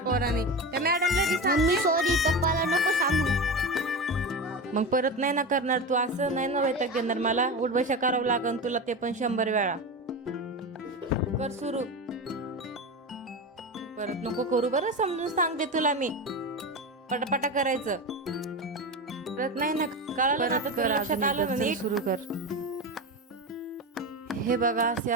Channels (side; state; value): both; normal; correlation 0.22